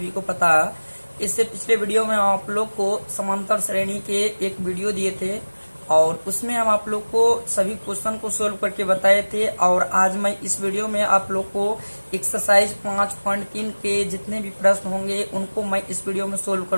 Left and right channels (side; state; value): both; inverted; correlation -1.00